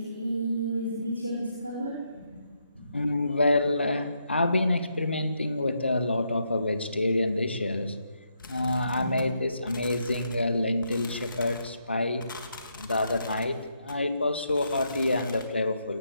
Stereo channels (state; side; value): inverted; both; correlation -0.79